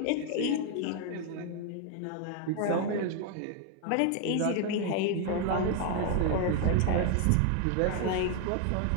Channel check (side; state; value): both; different; correlation 0.01